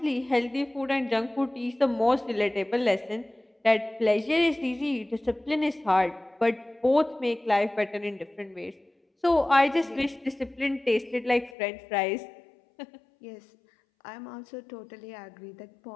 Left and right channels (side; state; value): right; drops out; at 11.6 s